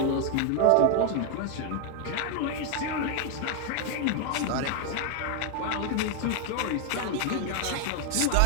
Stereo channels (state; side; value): different; both; correlation 0.00